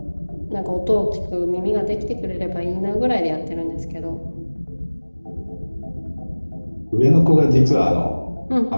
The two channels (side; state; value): both; inverted; correlation -1.00